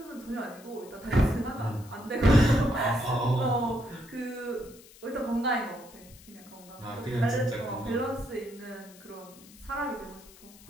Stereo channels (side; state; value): left; noise; hiss, 22 dB below the sound